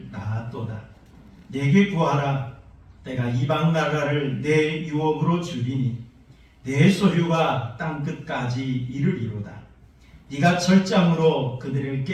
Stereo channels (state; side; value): identical; both; correlation 1.00